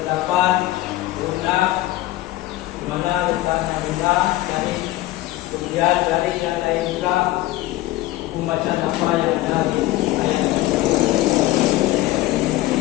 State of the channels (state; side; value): quieter; right; 16.5 dB